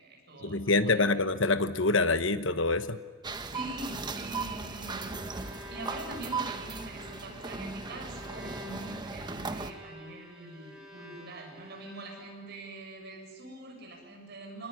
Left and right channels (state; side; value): normal; both; correlation -0.04